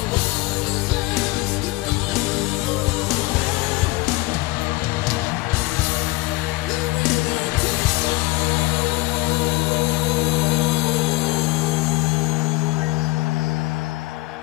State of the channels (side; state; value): right; quieter; 21.7 dB